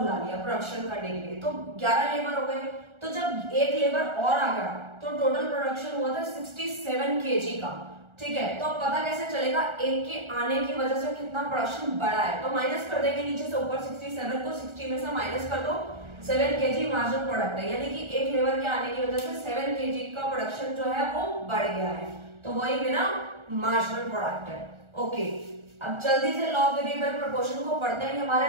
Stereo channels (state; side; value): late; left; 1.4 ms